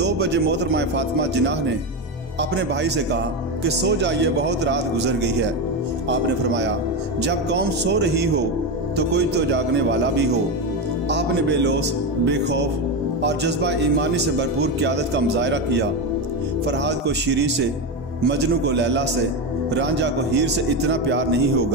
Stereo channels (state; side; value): normal; both; correlation 0.14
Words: बजे मोहतरमा फातिमा जिन्ना ने अपने भाई से कहा कि सो जाइए, बहुत रात गुजर गई है। आपने फरमाया, जब कौम सो रही हो तो कोई तो जागने वाला भी हो। आपने बेलौस, बेखौफ और जज्बा ईमानी से भरपूर क़यादत का मुजाहरा किया। फरहाद को शीरी से, मजनू को लैला से, रांझा को हीर से इतना प्यार नहीं